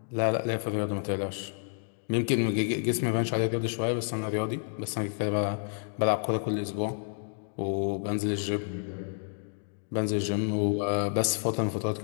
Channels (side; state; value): right; silent; digital silence